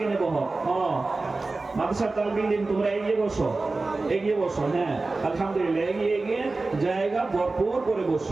বহ। মাদ্রাসার তালবিল দিন, তোমরা এগিয়ে বসো, এগিয়ে বসুন। হ্যাঁ, আলহামদুলিল্লাহ, এগিয়ে এগিয়ে জায়গা ভরপুর করে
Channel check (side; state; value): left; quieter; 3.5 dB